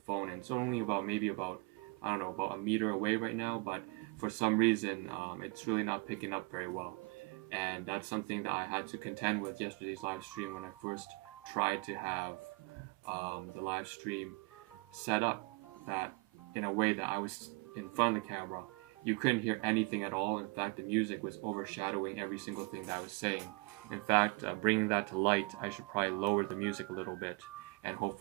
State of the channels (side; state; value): left; quieter; 29.1 dB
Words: phone, and it's only about about a meter away right now, but for some reason it's really not picking up very well, and that's something that I had to contend with yesterday's live stream when I first tried to have the live stream set up that in a way that I was in front of the camera. You couldn't hear anything at all. In fact, the music was overshadowing every single thing that I was saying. In fact, bringing that to light, I should probably lower the music a little bit, and